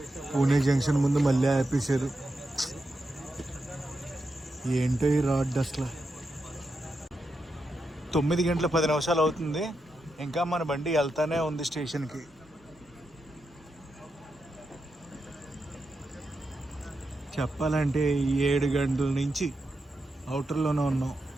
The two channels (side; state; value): both; normal; correlation 0.86